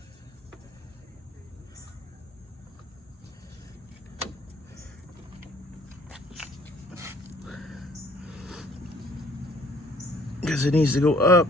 Because it needs to go up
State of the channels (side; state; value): both; normal; correlation 0.59